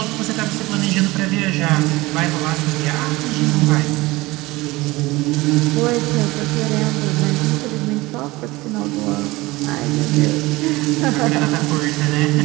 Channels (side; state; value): left; quieter; 20.7 dB